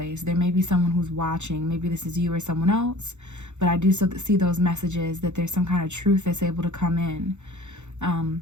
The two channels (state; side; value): late; left; 0.83 ms